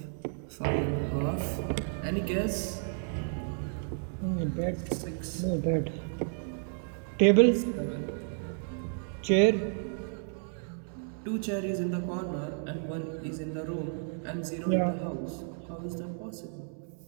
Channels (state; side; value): silent; left; 57 dB below the other